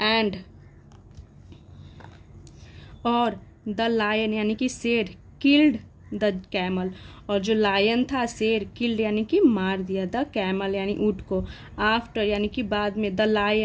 एंड और द लायन यानी कि शेर, किल्ड द कैमल, और जो लायन था शेर, किल्ड यानी कि मार दिया, द कैमल यानी ऊंट को, आफ्टर यानी कि बाद में, द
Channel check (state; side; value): identical; both; correlation 1.00